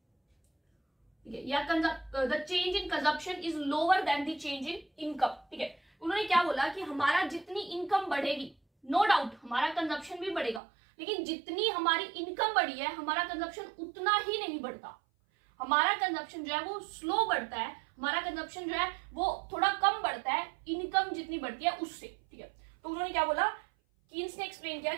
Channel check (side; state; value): left; drops out; at 10.6 s